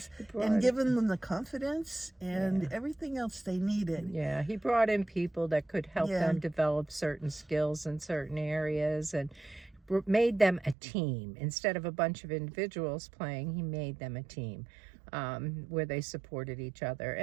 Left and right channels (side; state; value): left; drops out; at 10.8 s